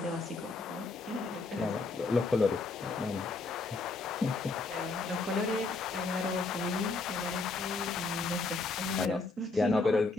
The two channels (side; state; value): right; quieter; 3.7 dB